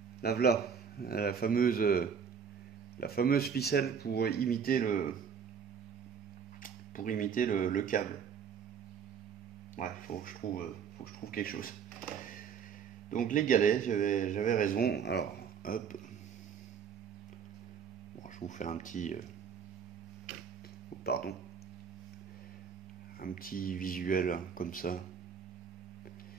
La voilà. La fameuse ficelle pour imiter le câble. Ouais, faut que je trouve quelque chose. Donc les galets, j'avais raison. Alors, hop. Bon, je vous fais un petit... oh, pardon. Un petit visuel comme ça.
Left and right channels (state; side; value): quieter; left; 6.9 dB